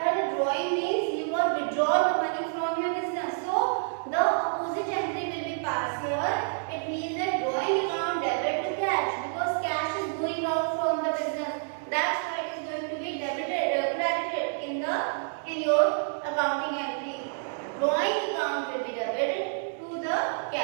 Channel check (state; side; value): silent; left; digital silence